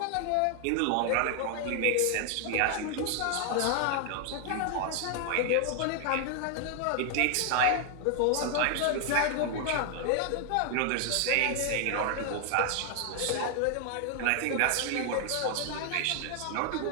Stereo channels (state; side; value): different; both; correlation 0.00